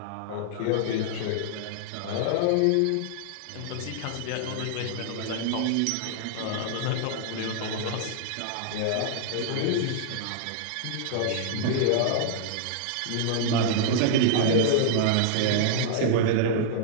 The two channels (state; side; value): different; both; correlation -0.01